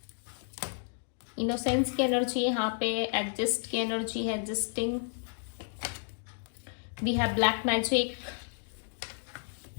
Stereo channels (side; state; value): right; silent; digital silence